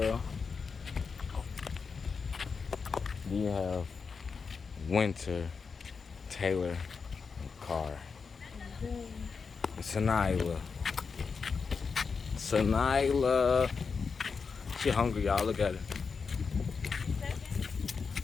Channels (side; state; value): right; quieter; 5.3 dB